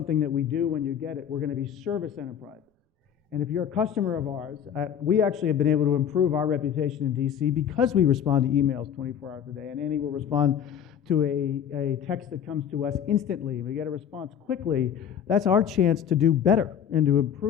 that we do when you get it. We're going to be service enterprises. And if you're a customer of ours, we actually have been able to improve our reputation in D.C. because we respond to emails 24 hours a day. And Andy will respond to a text that comes to us instantly. We get a response quickly. That's our chance to do better and to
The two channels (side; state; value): right; quieter; 8.8 dB